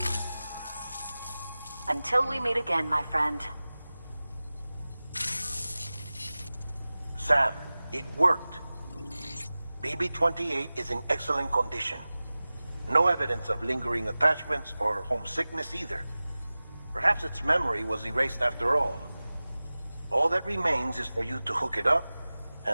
Until we meet again, my friend. Sam, it worked. BB-28 is in excellent condition. No evidence of lingering attachments or homesickness either. Perhaps its memory was erased after all. All that remains is for you to hook it up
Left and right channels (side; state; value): both; inverted; correlation -0.97